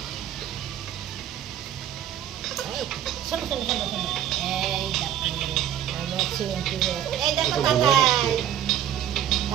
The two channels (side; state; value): left; quieter; 10.6 dB